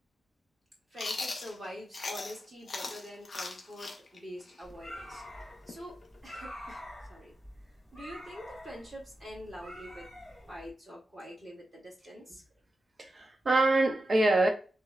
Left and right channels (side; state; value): both; normal; correlation 0.91